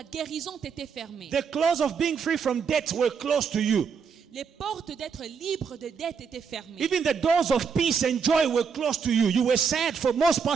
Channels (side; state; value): left; quieter; 6.1 dB